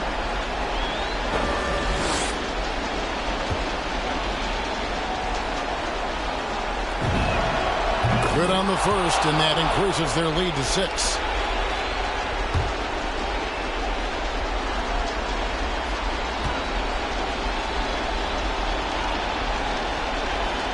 Good on the first, and that increases their lead to 6.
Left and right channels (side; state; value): both; identical; correlation 1.00